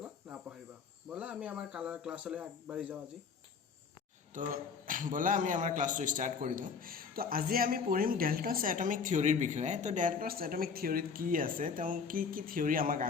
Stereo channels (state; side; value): quieter; right; 5.7 dB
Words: নাপাহৰিবা। বলা আমি আমাৰ ক্লাছলৈ আগবাঢ়ি যাওঁ আজি। তো বলা আমি আমাৰ ক্লাছটো স্টাৰ্ট কৰি দিওঁ। তো আজি আমি পঢ়িম ডেল্টনছ এটমিক থিওৰিৰ বিষয়ে। তো ডেল্টনছ এটমিক থিওৰিত কি আছে, তেওঁ কি কি থিওৰি আমাক